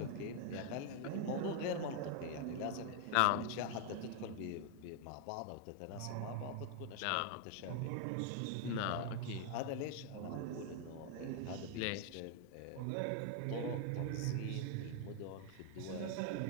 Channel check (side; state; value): both; different; correlation 0.00